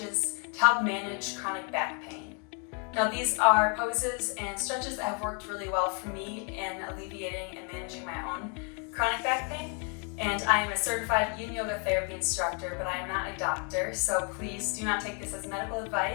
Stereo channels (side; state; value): right; quieter; 37.8 dB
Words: to help manage chronic back pain. Now these are poses and stretches that have worked really well for me in alleviating and managing my own chronic back pain. And I am a certified yin yoga therapy instructor, but I am not a doctor, so please do not take this as medical